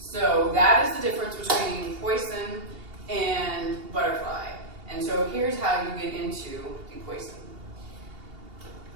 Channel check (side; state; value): left; late; 2.8 ms